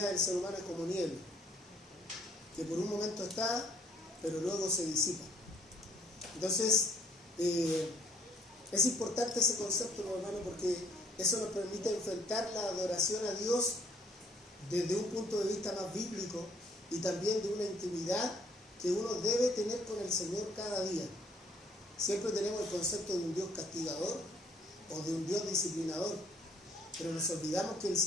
del ser humano es como niebla, que por un momento está, pero luego se disipa. Entonces, es importante ese concepto, hermano, porque eso nos permite enfrentar la adoración a Dios desde un punto de vista más bíblico y también de una intimidad que uno debe tener con el Señor cada día. Siempre tenemos el concepto de un Dios castigador o de un Dios disciplinador, pero nos olvidamos que el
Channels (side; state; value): both; normal; correlation 0.62